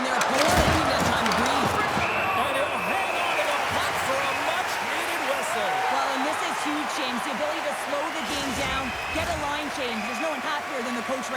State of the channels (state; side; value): identical; both; correlation 1.00